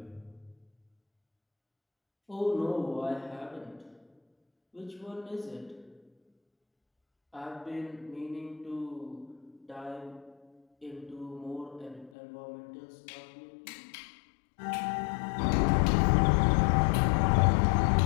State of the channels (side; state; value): right; drops out; at 12.1 s